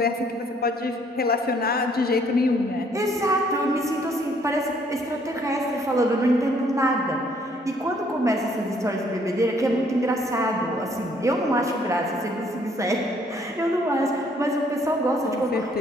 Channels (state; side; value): normal; both; correlation 0.64